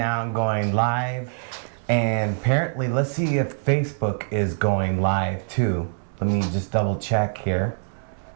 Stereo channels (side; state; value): left; silent; digital silence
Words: going live. And apparently, let's see if Facebook is going live too. Let me just double check here